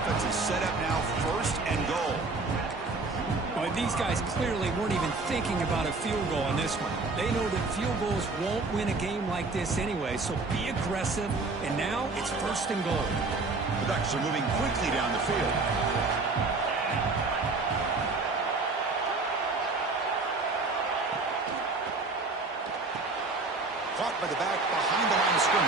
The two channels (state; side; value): quieter; left; 3.7 dB